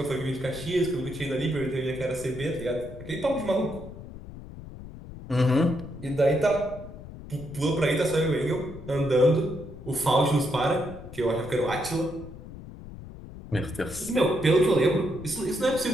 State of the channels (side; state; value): left; noise; rumble, 14 dB below the sound